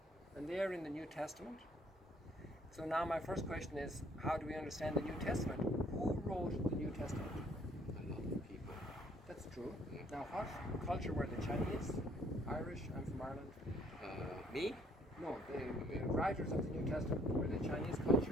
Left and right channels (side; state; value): both; normal; correlation 0.63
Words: And they are in the New Testament. So now my first question is, how do we understand the New Testament? Who wrote the New Testament? A lot of people. That's true. Now what culture were the Chinese? Irish? I'm from Ireland. Me? No, the writers of the New Testament. Were they Chinese